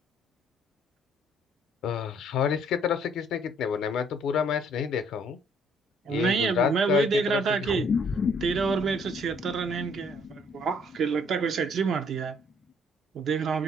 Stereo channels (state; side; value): normal; both; correlation 0.63